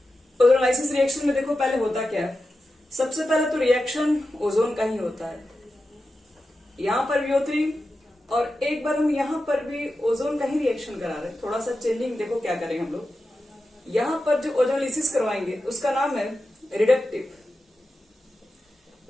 ओजोनोलाइसिस रिएक्शन में देखो पहले होता क्या है, सबसे पहले तो रिएक्शन ओजोन का ही होता है। यहां पर VO3 और एक बार हम यहां पर भी ओजोन का ही रिएक्शन करा रहे हैं। थोड़ा सा चेंजिंग देखो क्या करेंगे हम लोग, यहां पर जो ओजोनोलाइसिस करवाएंगे उसका नाम है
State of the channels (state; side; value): normal; both; correlation 0.91